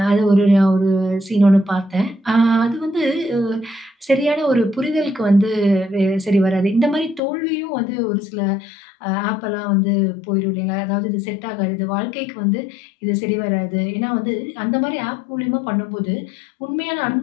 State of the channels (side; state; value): right; drops out; at 7.2 s